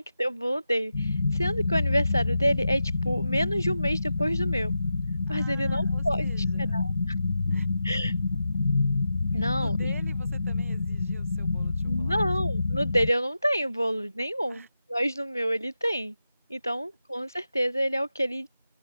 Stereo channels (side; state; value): both; inverted; correlation -0.89